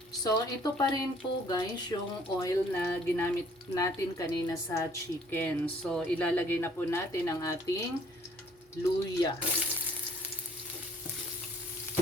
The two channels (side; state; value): both; normal; correlation 0.59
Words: So ito pa rin po guys yung oil na ginamit natin kanina sa chicken. So ilalagay na po natin ang ating luya.